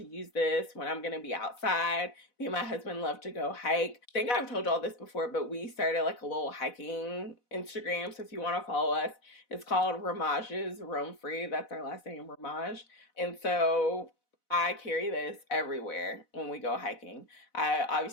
use this when I'm gonna be outside. Me and my husband love to go hike. I think I've told y'all this before, but we started like a little hiking Instagram. So if you want to follow us, it's called Ramage's Roam Free. That's our last name, Ramage. And so I carry this everywhere when we go hiking. I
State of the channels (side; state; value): right; late; 4.0 ms